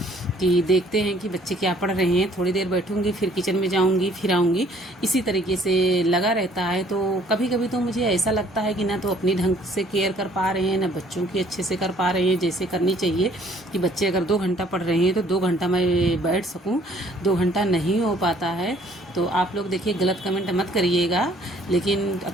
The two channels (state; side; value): normal; both; correlation 0.59